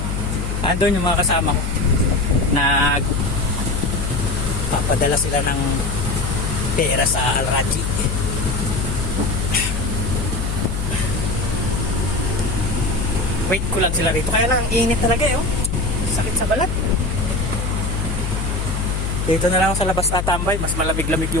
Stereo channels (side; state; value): left; noise; hum, 2 dB below the sound